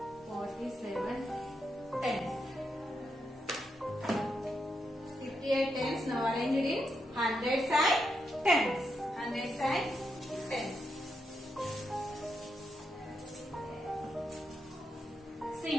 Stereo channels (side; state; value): both; normal; correlation 0.83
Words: 47 tens. 58 tens. Now arrange it in hundreds and tens. Hundreds and tens. See